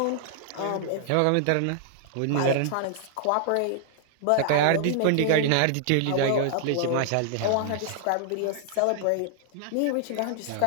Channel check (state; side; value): different; both; correlation -0.01